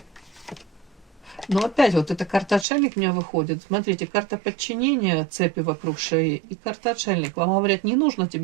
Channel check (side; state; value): left; drops out; at 2.7 s